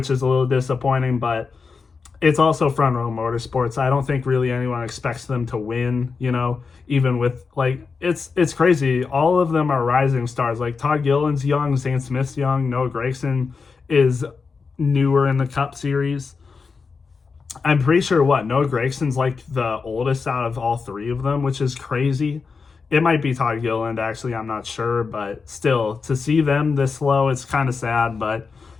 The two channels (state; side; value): quieter; right; 4.9 dB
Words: is a little disappointing, but it's also Front Row Motorsports. I don't think really anyone expects them to win, even with, it's crazy. All of them are rising stars. Like, Todd Gilliland's young, Zane Smith's young, Noah Gragson is newer in the Cup Series. I'm pretty sure, Noah Gragson's, the oldest out of all 3 of them, which is crazy. It might be Todd Gilliland, actually, I'm not sure, but still, to see them this low, it's kind of sad, but